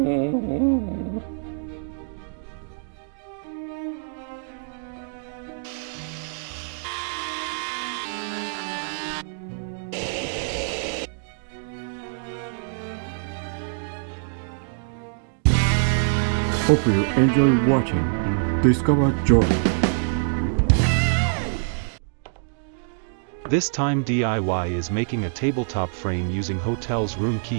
Hope you enjoy watching Discover Joy. This time DIY is making a tabletop frame using hotel's room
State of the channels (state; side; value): silent; left; digital silence